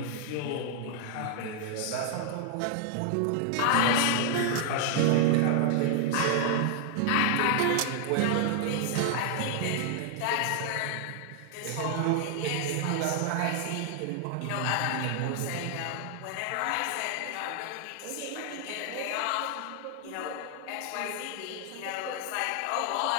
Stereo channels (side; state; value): both; different; correlation 0.00